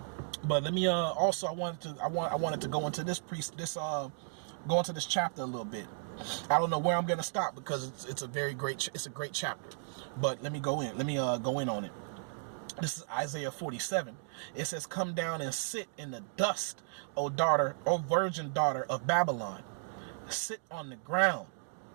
But let me also I wanted to go into this go into this chapter a little bit. I don't know where I'm going to stop because it's a great chapter. But let me go in. Let me go in on it. This is Isaiah 47. It says, "Come down and sit in the dust, O virgin daughter of Babylon. Sit on the ground.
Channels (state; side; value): silent; left; digital silence